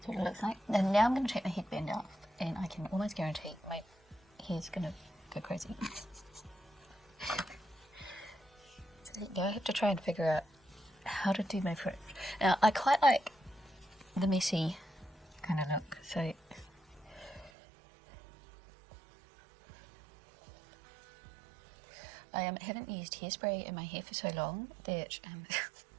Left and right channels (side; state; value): left; drops out; at 17.5 s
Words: what it looks like. And now I'm going to take my headband off, and I can almost guarantee my hair's going to go crazy. So now I have to try and figure out how to do my fringe. Now I quite like the messy kind of look, so I haven't used hairspray in my hair for so long that